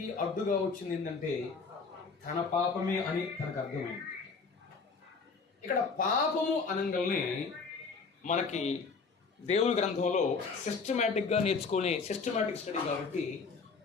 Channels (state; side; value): quieter; right; 4.8 dB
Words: అడ్డుగా వచ్చింది ఏంటంటే తన పాపమే అని తనకు అర్థమైంది. ఇక్కడ పాపము అనగానే మనకి దేవుని గ్రంథంలో సిస్టమేటిక్గా నేర్చుకునే సిస్టమేటిక్ స్టడీ కాబట్టి